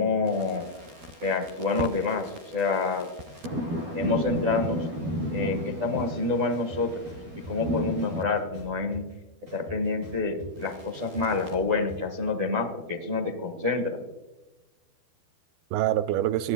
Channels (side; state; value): left; late; 12 ms